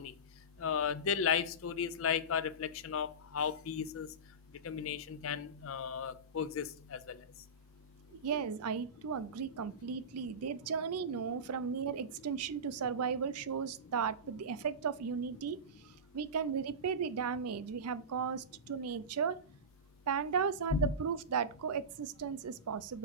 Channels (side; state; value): both; normal; correlation -0.20